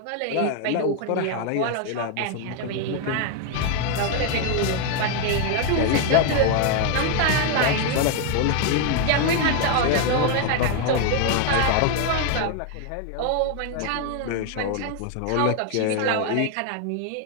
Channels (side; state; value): both; different; correlation 0.00